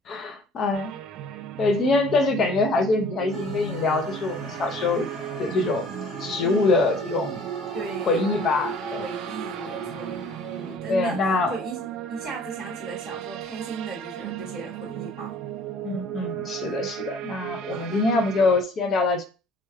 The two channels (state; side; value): normal; both; correlation 0.52